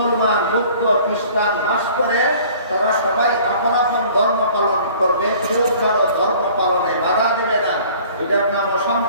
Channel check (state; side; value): inverted; both; correlation -0.51